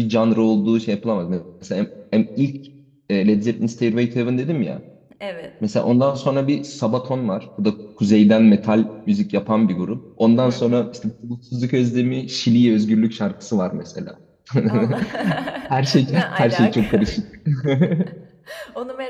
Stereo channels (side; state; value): both; identical; correlation 1.00